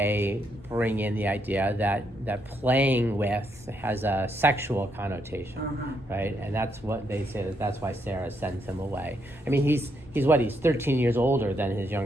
bring in the idea that playing with has a sexual connotation, right? And that's what they say, that's why Sarah sends him away. I mean, he's 13 years older than his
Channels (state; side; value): normal; both; correlation 0.77